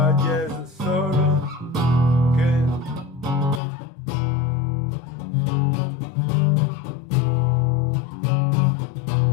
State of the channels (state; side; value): drops out; right; at 3.6 s